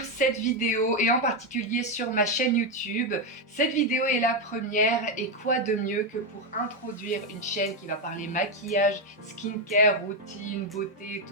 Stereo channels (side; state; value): both; normal; correlation 0.06